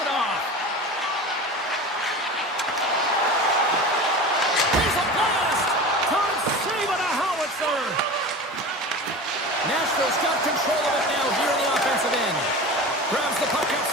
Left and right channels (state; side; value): normal; both; correlation 0.32